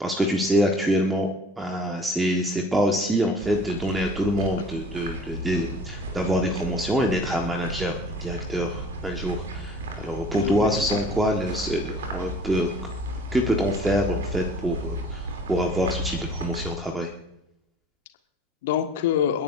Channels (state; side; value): normal; both; correlation 0.48